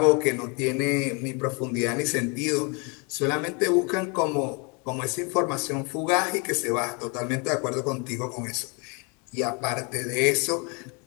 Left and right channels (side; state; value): right; quieter; 32.6 dB